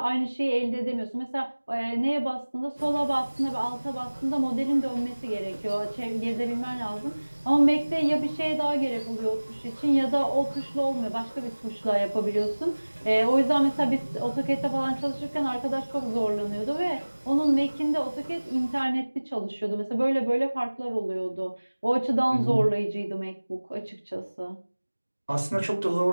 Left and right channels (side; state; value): both; inverted; correlation -1.00